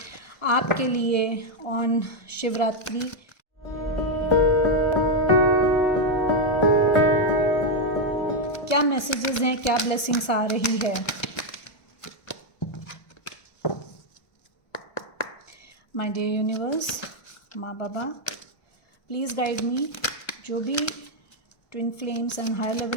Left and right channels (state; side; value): late; right; 1.1 ms